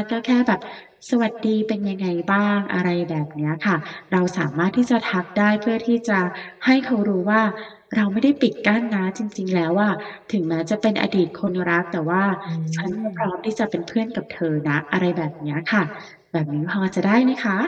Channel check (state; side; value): identical; both; correlation 1.00